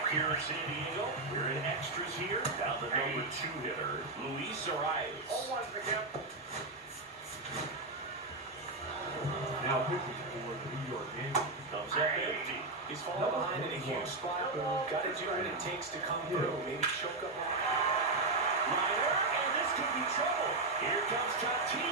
here in San Diego, we're in extras here. Now the number 2 hitter, Luis Arias. 0-1 to the count. Now pitching for the New York Yankees. Comes up empty. He's falling behind in a huge spot, but got to do what it takes to come through. Maybe choke up. Liner, and this could be trouble. Here comes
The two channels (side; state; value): left; quieter; 3.4 dB